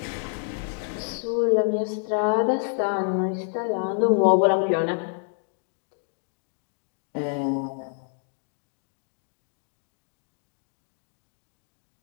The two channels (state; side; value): silent; right; 56 dB below the other